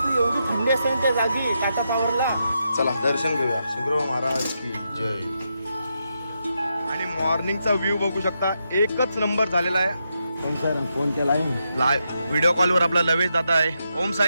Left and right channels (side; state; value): both; inverted; correlation -0.83